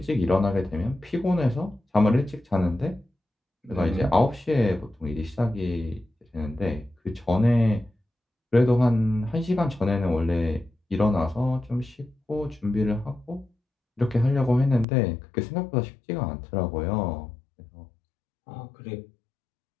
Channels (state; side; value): drops out; right; at 14.9 s